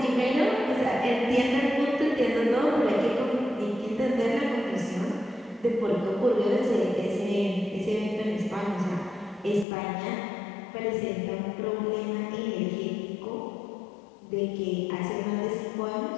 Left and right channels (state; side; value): drops out; right; at 9.7 s